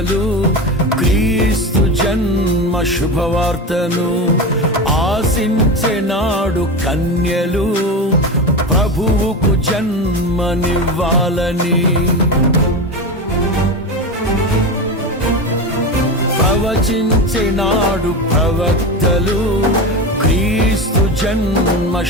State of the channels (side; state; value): both; normal; correlation 0.22